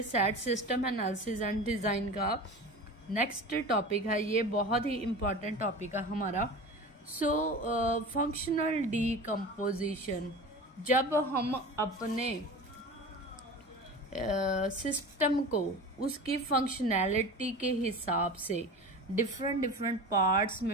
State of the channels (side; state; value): both; normal; correlation 0.33